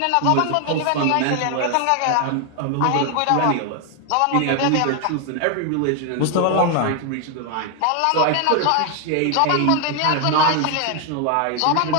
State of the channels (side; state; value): both; different; correlation 0.01